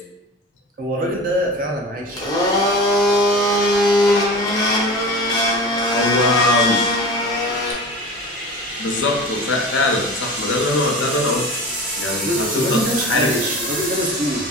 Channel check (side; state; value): both; normal; correlation 0.33